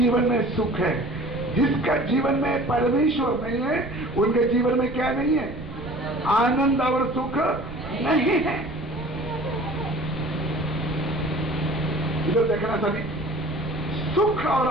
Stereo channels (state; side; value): noise; right; rumble, 12 dB below the sound